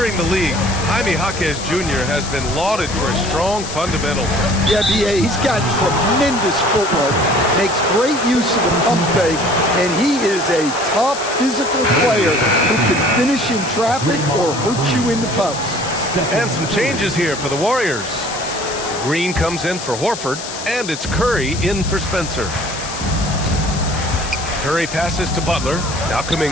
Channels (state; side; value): noise; left; hiss, 9 dB below the sound